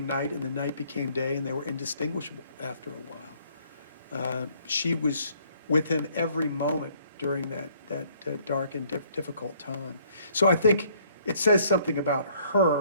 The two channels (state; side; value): inverted; both; correlation -0.63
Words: night and the night became day, and they were indistinguishable after a while. She was with him every moment during that dark and difficult time. So I think it says something about